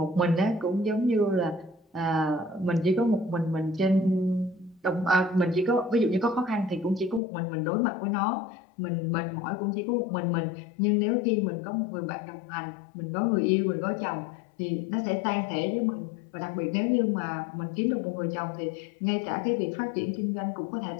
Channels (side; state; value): right; drops out; at 7.2 s